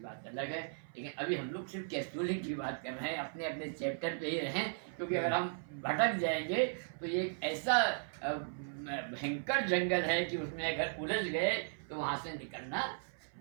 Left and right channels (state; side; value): silent; left; 53 dB below the other